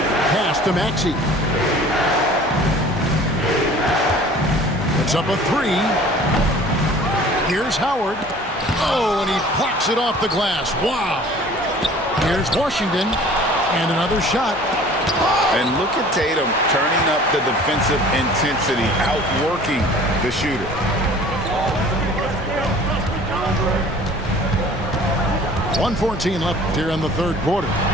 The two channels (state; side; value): normal; both; correlation 0.48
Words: Pass to Maxey. The Puts up a three. Here's Howard. Oh, and he plucks it off the glass. Wow. Here's Washington. And another shot. And look at Tatum turning up the defensive intensity, outworking the shooter. .114 left here in the third quarter.